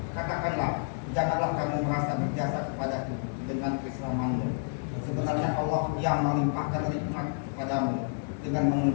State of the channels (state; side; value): silent; right; digital silence